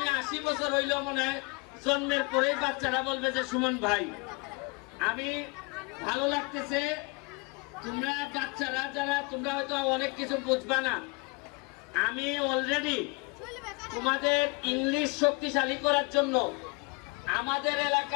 80 বছর হইল মনে হয় জন্মের পরেই বাচ্চারা বলবে যে সুমন ভাই। আমি ভালো লাগতেছে, তোমরা বাচ্চারা যারা তোমরা হয়তো অনেক কিছু বুঝবা না, আমি অলরেডি তোমাদের ইংলিশ শক্তিশালী করার জন্য আমাদের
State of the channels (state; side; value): quieter; right; 29.4 dB